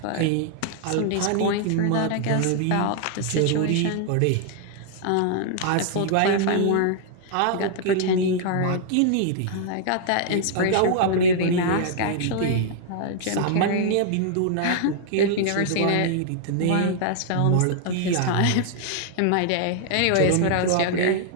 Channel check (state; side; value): different; both; correlation -0.01